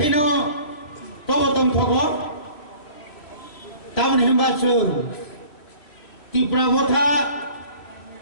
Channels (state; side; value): late; right; 3.1 ms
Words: তবতম থব তামন হেমবাচুর ত্রিপুরা মথা